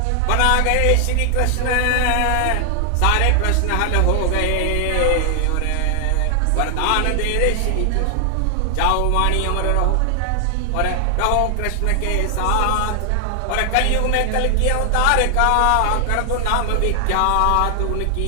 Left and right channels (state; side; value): different; both; correlation 0.00